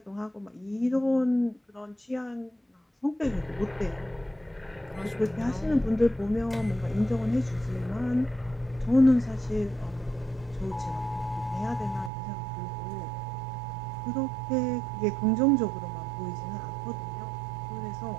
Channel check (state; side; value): drops out; left; at 12.1 s